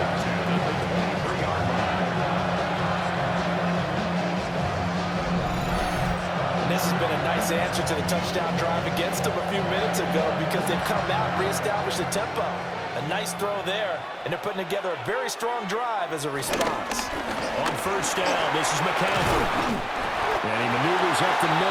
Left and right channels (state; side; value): identical; both; correlation 1.00